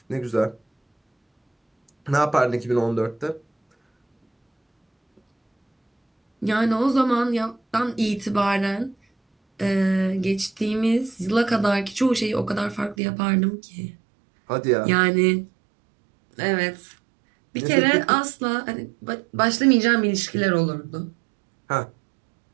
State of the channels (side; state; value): left; drops out; at 13.0 s